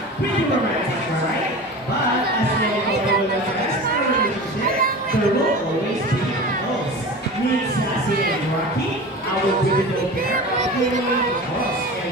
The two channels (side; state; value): both; normal; correlation 0.33